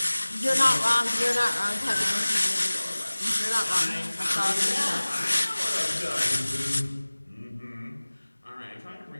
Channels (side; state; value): both; inverted; correlation -1.00